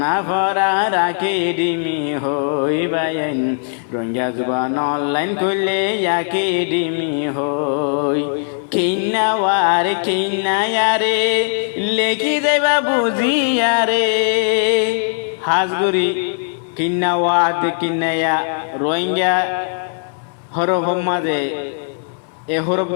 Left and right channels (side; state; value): right; silent; 60 dB below the other